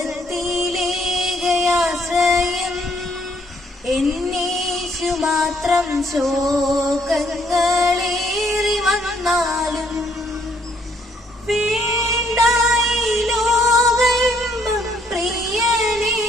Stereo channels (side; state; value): both; normal; correlation 0.68